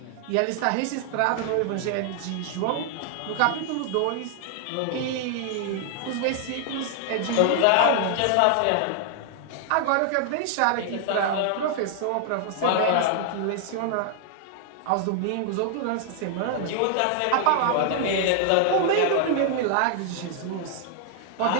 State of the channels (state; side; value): different; both; correlation 0.00